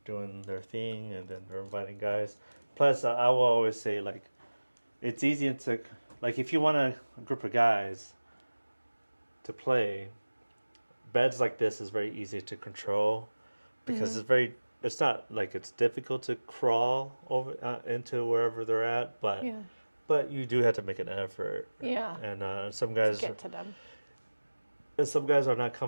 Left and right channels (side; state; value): both; inverted; correlation -1.00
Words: doing their thing, and then they're inviting guys. Plus, I will always say, like, it's easy to, like, if you want a group of guys to play, beds like this is very easy to control, because it's not like it's difficult to crawl over into wherever they're at, but but you do have to make an effort. Yeah. And some guys get to them. And some guys are not